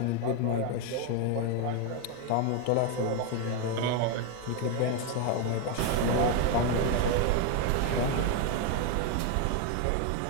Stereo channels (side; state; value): both; different; correlation 0.01